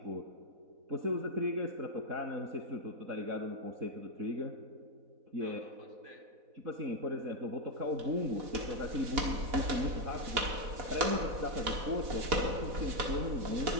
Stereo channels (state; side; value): late; left; 4.1 ms